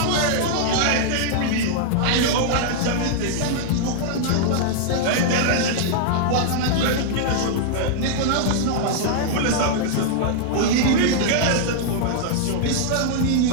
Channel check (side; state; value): both; different; correlation -0.01